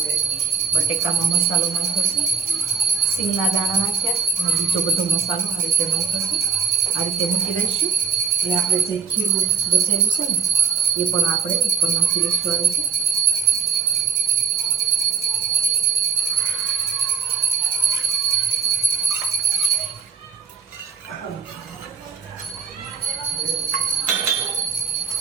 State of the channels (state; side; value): quieter; left; 6.1 dB